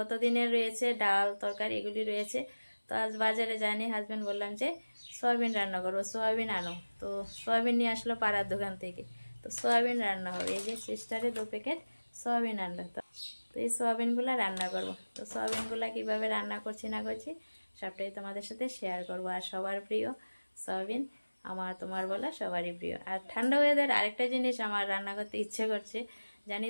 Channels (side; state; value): both; inverted; correlation -1.00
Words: রয়েছে ডাল তরকারি, এগুলি রয়েছে। তো আজ বাজারে যায়নি, হাজবেন্ড বললাম যে সয়াবিন রান্না করবো, সয়াবিন আনো। তো সয়াবিন নিয়ে আসলো পাড়ার দোকান থেকে। তো সয়াবিন রান্না হবে, এই যে সিস্টারে 2 প্যাকেট সয়াবিন আনলো। তো এই সয়াবিনগুলো রান্না করব। তো সয়াবিনগুলো কিভাবে রান্না করছি না করছি সবটাই তোমাদের সাথে শেয়ার করব। আর সবার প্রিয় সয়াবিন, আমার তোমার বলা সবারই প্রিয়। আর ঠান্ডা ওয়েদার আরেকটা জিনিস আমার রান্না করতে ইচ্ছে করছে, জানি